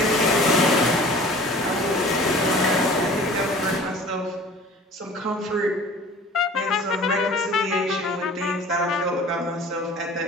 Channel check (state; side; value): normal; both; correlation 0.45